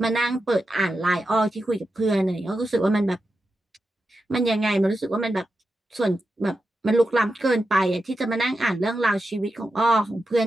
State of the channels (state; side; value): normal; both; correlation 0.89